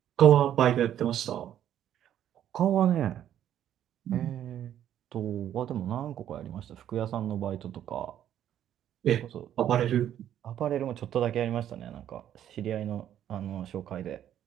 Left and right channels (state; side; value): quieter; left; 10.8 dB